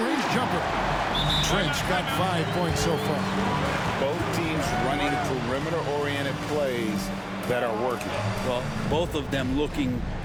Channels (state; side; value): identical; both; correlation 1.00